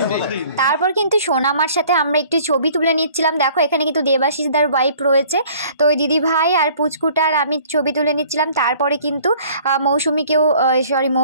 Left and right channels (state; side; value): inverted; both; correlation -0.53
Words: তারপর কিন্তু সোনামার সাথে আমরা একটু ছবি তুলে নিচ্ছিলাম। দেখো এখানে কিন্তু দেবাশিসদার ওয়াইফ রয়েছে, তো ওই দিদি ভাই আর পুচকুটার আমি ছবি তুলে নিচ্ছিলাম। তারপরে কিন্তু